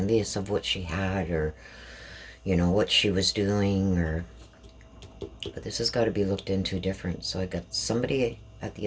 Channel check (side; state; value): both; identical; correlation 1.00